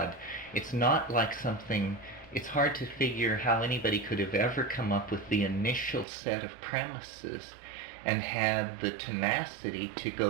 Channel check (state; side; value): drops out; left; at 6.1 s